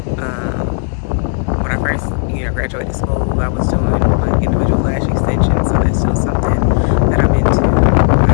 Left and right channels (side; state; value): right; silent; 59 dB below the other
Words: When I first, graduated school, I was doing like individual lash extensions, so that's still something that I'm into. I